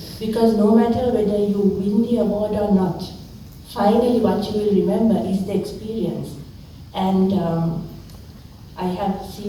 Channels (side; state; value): both; identical; correlation 1.00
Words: Because no matter whether you win the award or not, finally what you will remember is the experience. And I have